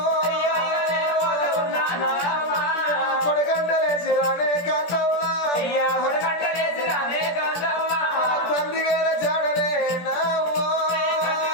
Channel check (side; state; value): right; late; 17 ms